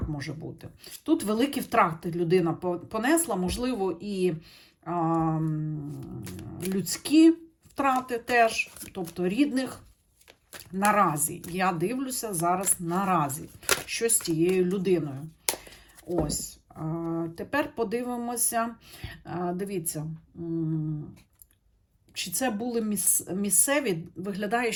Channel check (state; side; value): identical; both; correlation 1.00